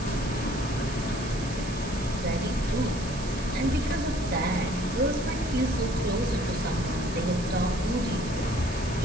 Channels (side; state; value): right; noise; hiss, 13 dB below the sound